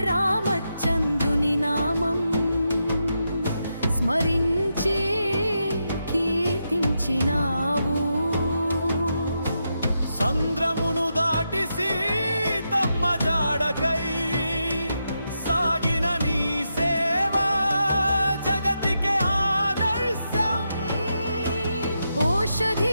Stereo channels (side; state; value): both; inverted; correlation -0.85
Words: రామచంద్రుని నామం స్మరించి కీర్తించినావు. సంద్రమును దాటి సీతమ్మ జాడకై సాగిన నీ సేవా జగతికే ఆదర్శం.